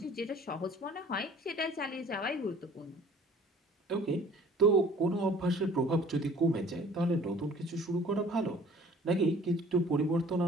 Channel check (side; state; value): both; normal; correlation 0.51